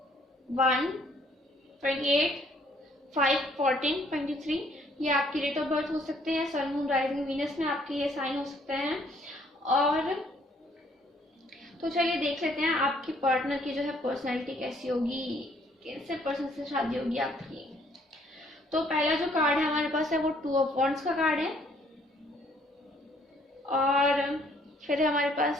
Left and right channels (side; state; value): both; normal; correlation 0.64